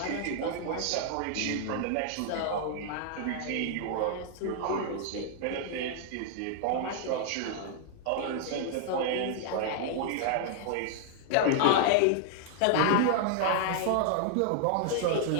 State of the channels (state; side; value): different; both; correlation -0.01